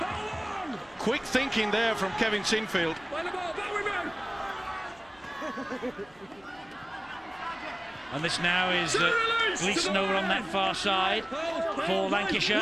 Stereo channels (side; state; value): left; noise; hum, 30 dB below the sound